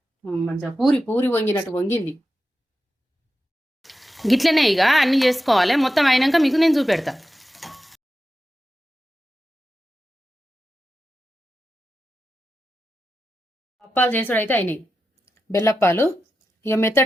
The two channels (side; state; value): both; normal; correlation 0.91